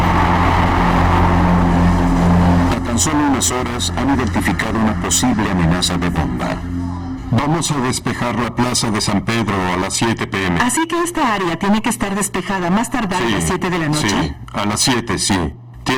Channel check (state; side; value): identical; both; correlation 1.00